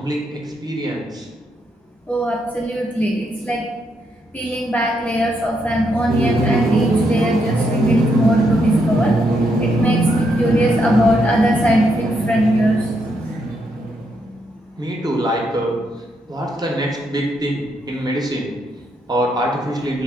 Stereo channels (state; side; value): normal; both; correlation 0.78